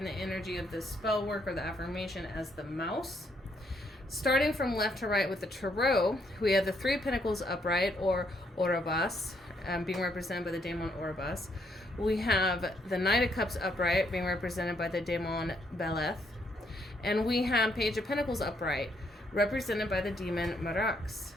the energy of the spell work or the affirmation as the mouse. Starting from left to right with the tarot, we have the 3 of Pentacles upright or Orobas, being represented by the daemon Orobas. We have the Knight of Cups upright, being represented by the daemon Beleth. And we have Page of Pentacles upright, represented by the demon Marax.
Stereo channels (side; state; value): both; normal; correlation 0.73